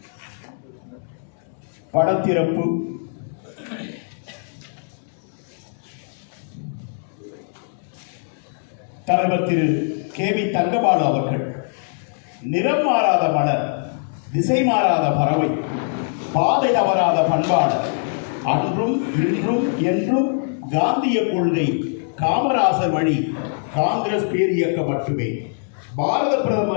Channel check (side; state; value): right; silent; 63 dB below the other